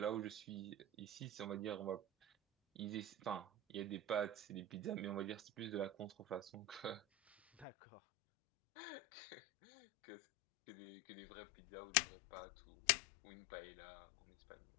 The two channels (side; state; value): right; drops out; at 7.7 s